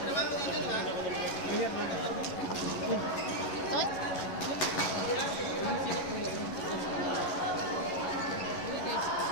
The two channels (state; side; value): late; right; 11 ms